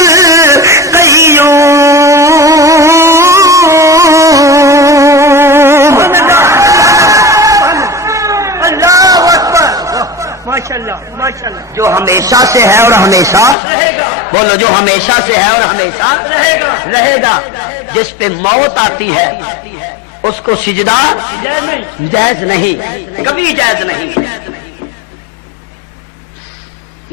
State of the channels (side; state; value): right; drops out; at 13.6 s